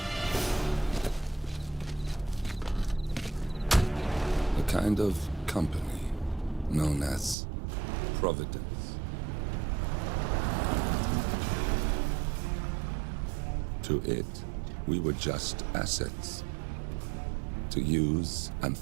A kind of company known as Providence. To it, we were just assets. To use and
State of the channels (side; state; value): left; drops out; at 7.4 s